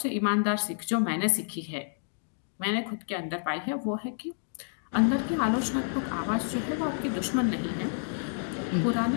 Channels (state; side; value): silent; right; digital silence